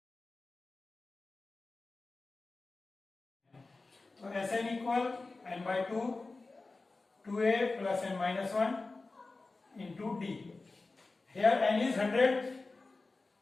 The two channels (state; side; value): quieter; right; 3.5 dB